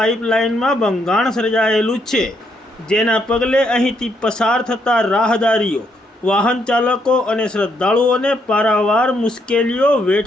ભંગાણ સર્જાયેલું છે, જેના પગલે અહીંથી પસાર થતા રાહદારીઓ, વાહન ચાલકો અને શ્રદ્ધાળુઓને પારાવાર મુશ્કેલીઓ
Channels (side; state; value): both; normal; correlation 0.75